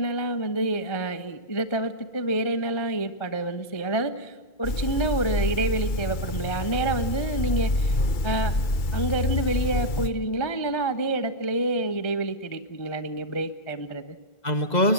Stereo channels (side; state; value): right; late; 2.2 ms